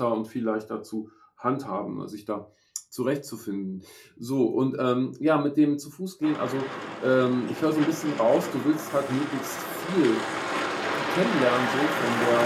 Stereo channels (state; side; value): identical; both; correlation 1.00